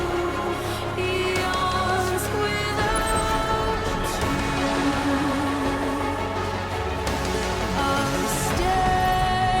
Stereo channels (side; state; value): both; identical; correlation 1.00